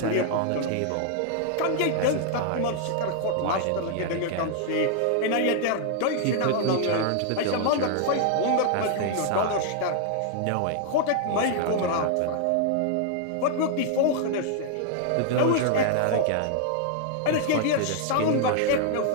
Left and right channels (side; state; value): both; different; correlation 0.00